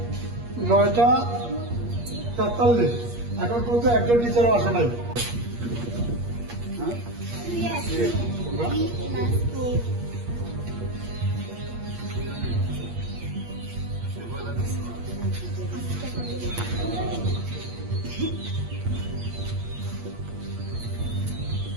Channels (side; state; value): left; late; 8.5 ms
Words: 9:43। এখন পর্যন্ত একজন টিচারও আসে নাই। Yes. Last school.